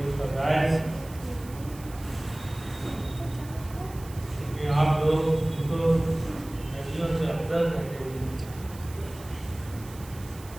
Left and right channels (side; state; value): right; noise; hiss, 19 dB below the sound